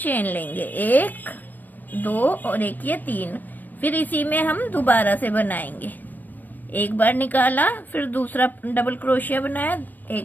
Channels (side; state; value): right; late; 0.088 ms